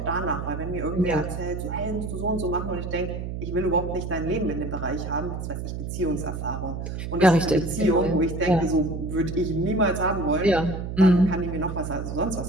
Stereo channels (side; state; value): right; noise; hum, 5 dB below the sound